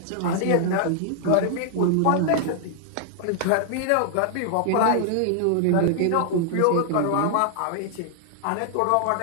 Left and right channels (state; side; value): different; both; correlation -0.01